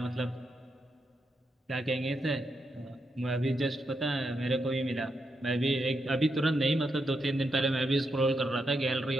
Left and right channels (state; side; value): normal; both; correlation 0.83